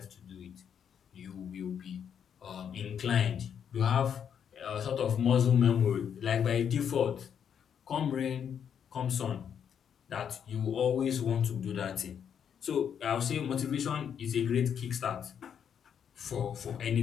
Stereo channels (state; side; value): quieter; right; 8.1 dB